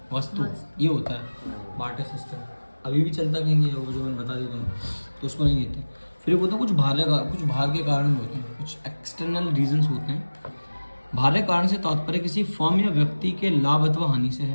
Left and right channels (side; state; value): both; inverted; correlation -1.00